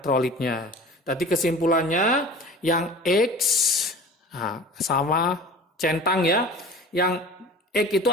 Tadi kesimpulannya yang X sama centang, ya. Yang X itu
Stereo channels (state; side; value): normal; both; correlation 0.40